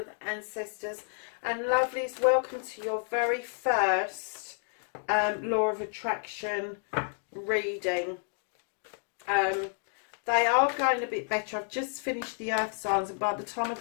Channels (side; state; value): right; silent; 57 dB below the other